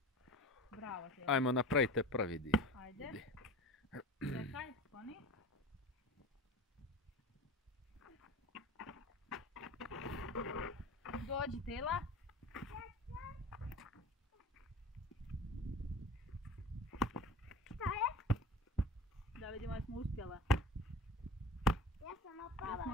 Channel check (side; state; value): both; normal; correlation 0.36